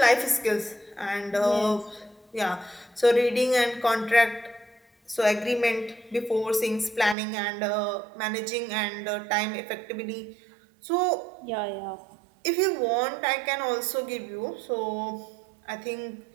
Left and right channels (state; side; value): drops out; left; at 7.2 s